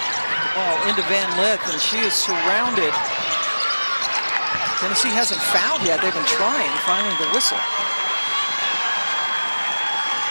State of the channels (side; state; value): both; inverted; correlation -1.00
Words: Ball into Van Lith, and she is surrounded. Tennessee hasn't fouled yet. They've been trying, finally the whistle.